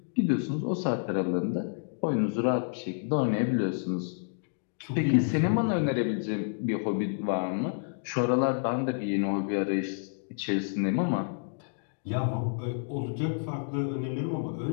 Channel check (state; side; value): silent; right; digital silence